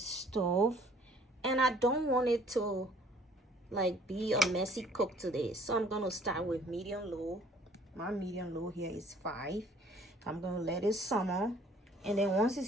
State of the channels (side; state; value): both; normal; correlation 0.57